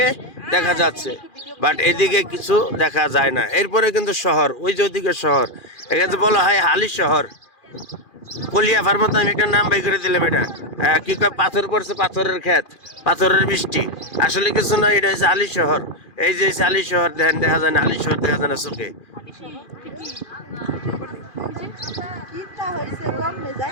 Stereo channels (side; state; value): right; late; 2.4 ms